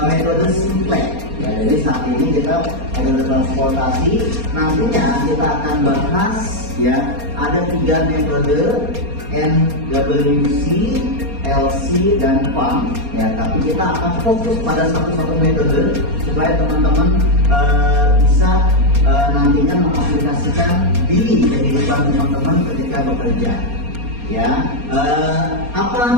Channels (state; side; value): late; left; 4.2 ms